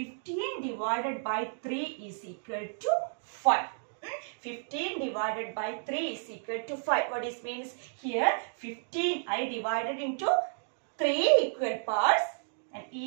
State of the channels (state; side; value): silent; left; digital silence